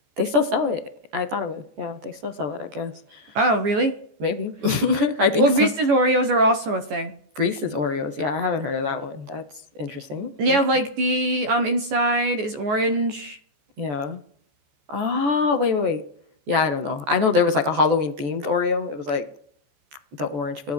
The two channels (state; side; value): late; left; 14 ms